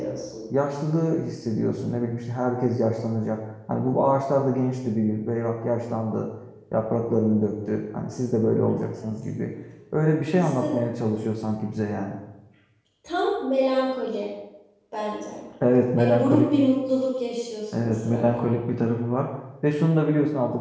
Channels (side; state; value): both; identical; correlation 1.00